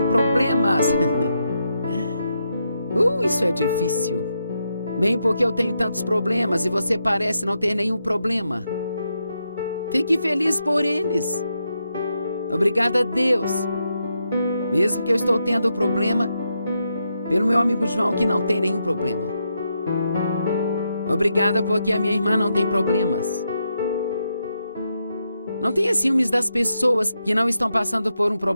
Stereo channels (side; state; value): both; inverted; correlation -0.83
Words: problemas. Isso é difícil. Bem, porque eu tenho tantos problemas e você parece não ter nenhum problema. Fique feliz por eles. Obrigada a Deus. Mesmo que eu estou tendo problema, pelo meu amigo João que não tem nenhum problema. Obrigada porque a minha irmã não tem problemas. Não tenha ciúmes das pessoas que não estão passando por um